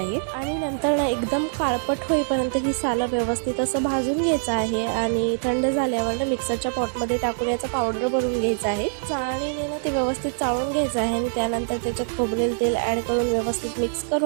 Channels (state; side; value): silent; left; digital silence